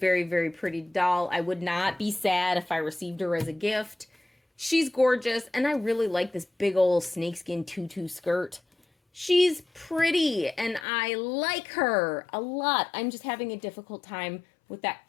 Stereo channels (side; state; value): right; drops out; at 10.9 s